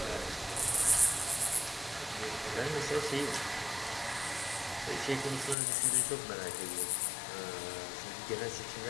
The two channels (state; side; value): drops out; right; at 5.6 s